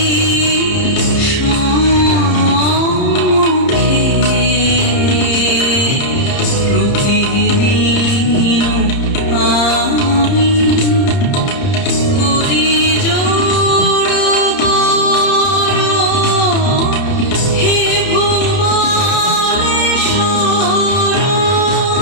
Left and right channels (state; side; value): late; right; 30 ms